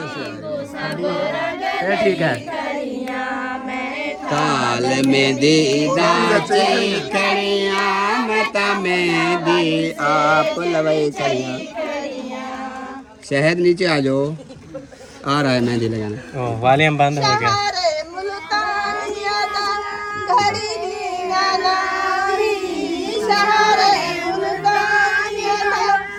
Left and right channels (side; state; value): both; identical; correlation 1.00